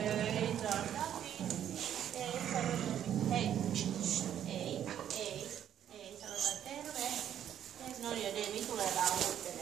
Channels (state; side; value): quieter; left; 10.2 dB